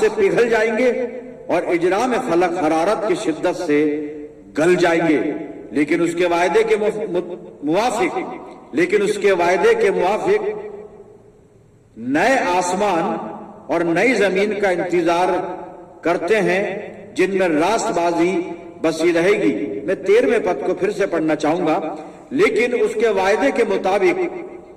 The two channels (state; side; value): identical; both; correlation 1.00